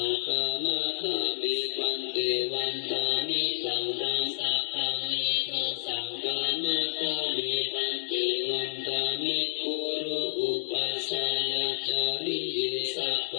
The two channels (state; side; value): silent; right; digital silence